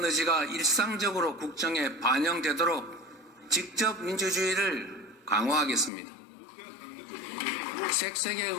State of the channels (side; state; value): right; drops out; at 5.9 s